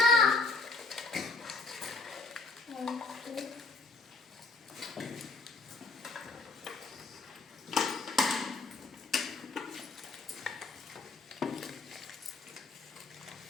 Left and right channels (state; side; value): quieter; right; 3.6 dB